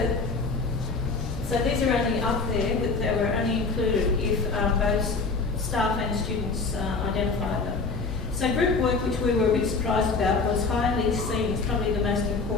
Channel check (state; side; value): quieter; right; 4.2 dB